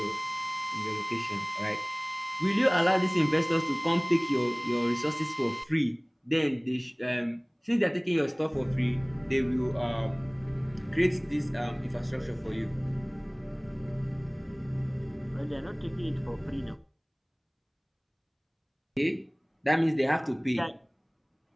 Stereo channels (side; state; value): both; identical; correlation 1.00